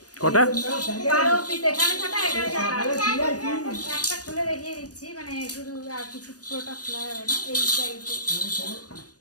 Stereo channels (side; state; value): right; late; 0.68 ms